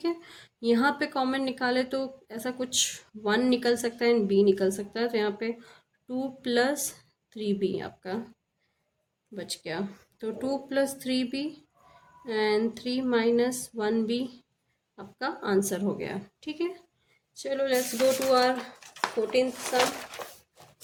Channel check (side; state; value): both; identical; correlation 1.00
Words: है, यहाँ पे कॉमन निकाले तो ऐसा कुछ 1 निकल सकता है एंड b निकल सकता है, तो यहाँ पे 2 प्लस 3b आपका बच गया। तो 2 plus 3b and 3 minus 1b आपका आंसर हो गया। ठीक है, चलो let's go to our 14th sum.